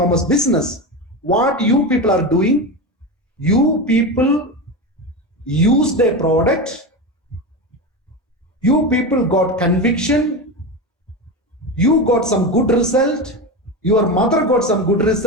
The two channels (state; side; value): normal; both; correlation 0.20